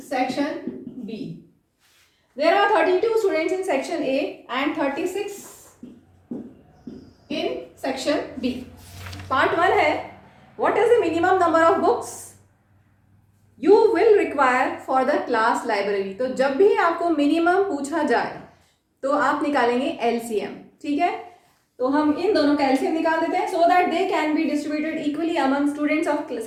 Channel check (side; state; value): both; identical; correlation 1.00